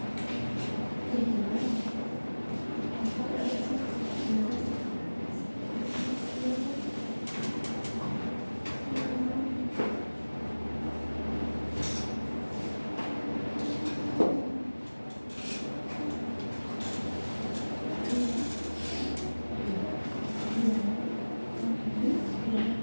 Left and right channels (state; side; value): inverted; both; correlation -1.00